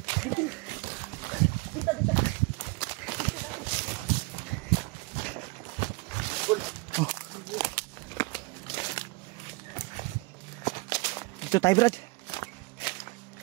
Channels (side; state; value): left; quieter; 26.5 dB